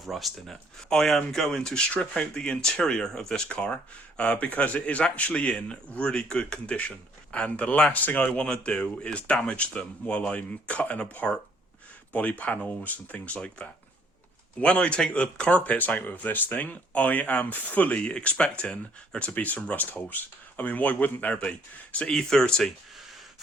rust in it. I am going to strip out the interior of this car because it is actually in really good condition. And the last thing I want to do is damage them while I'm cutting apart body panels and things like that. When I take the carpets out of this thing, I am fully expecting there to be some rust holes. I mean, why wouldn't there be? It's an E30,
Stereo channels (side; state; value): both; normal; correlation 0.63